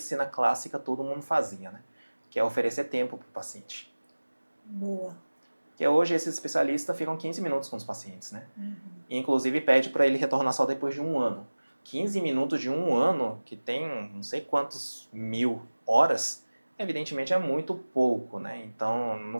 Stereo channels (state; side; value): inverted; both; correlation -1.00